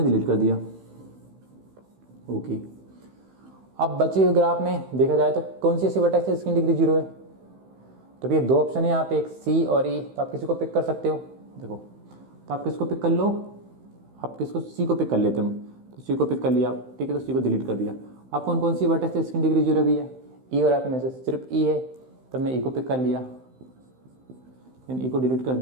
डिलीट कर दिया, ओके। अब बचे हुए ग्राफ में देखा जाए तो कौन सी ऐसी वर्टेक्स है जिसकी डिग्री 0 है। तो भैया 2 ऑप्शन है यहाँ पे, एक सी और ई। तो आप किसी को पिक कर सकते हो, देखो। तो आप किसको पिक कर लो, आप किसको, सी को पिक कर लेते हैं। तो सी को पिक कर लिया आप, ठीक है। तो सी को डिलीट कर दिया। अब कौन कौन सी वर्टेक्स है जिसकी डिग्री 0 भी है, ई और एफ में से सिर्फ ई है। तो हमने ई को पिक कर लिया, देन ई को डिलीट कर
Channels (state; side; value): late; left; 15 ms